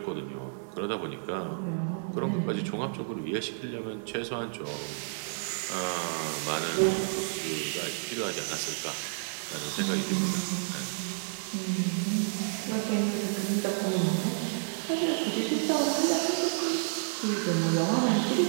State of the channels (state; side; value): silent; left; 58 dB below the other